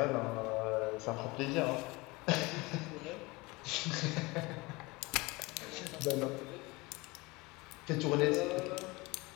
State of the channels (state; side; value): quieter; right; 23.6 dB